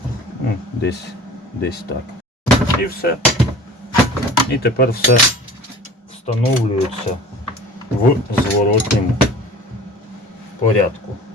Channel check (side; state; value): both; normal; correlation 0.42